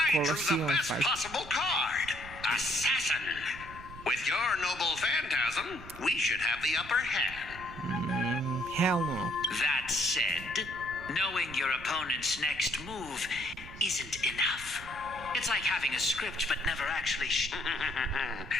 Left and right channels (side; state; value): right; noise; rumble, 15 dB below the sound